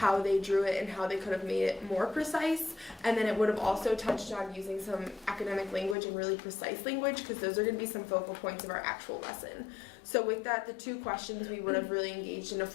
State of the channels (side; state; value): right; drops out; at 6.0 s